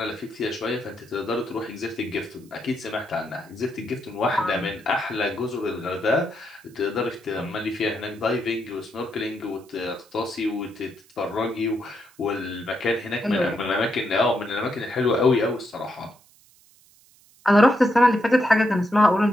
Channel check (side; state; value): right; noise; hiss, 29 dB below the sound